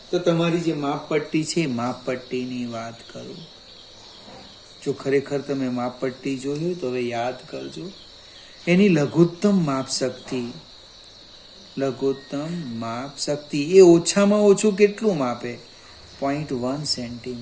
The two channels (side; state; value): both; identical; correlation 1.00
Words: તો તમારી જે માપપટ્ટી છે માપપટ્ટીની વાત કરું. જો ખરેખર તમે માપપટ્ટી જોઈ હોય તો હવે યાદ કરજો. એની લઘુત્તમ માપ શક્તિ, લઘુત્તમ માપ શક્તિ એ ઓછામાં ઓછું કેટલું માપે? 0.1